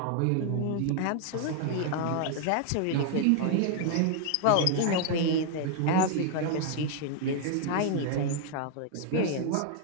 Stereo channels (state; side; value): different; both; correlation 0.00